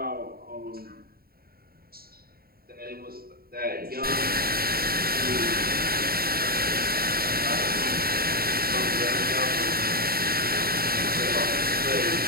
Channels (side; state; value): left; late; 0.44 ms